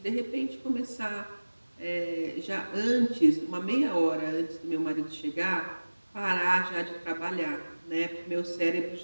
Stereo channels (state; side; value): inverted; both; correlation -1.00